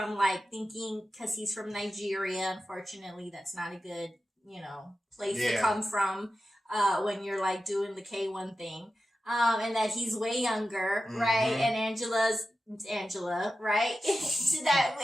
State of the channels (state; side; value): normal; both; correlation 0.93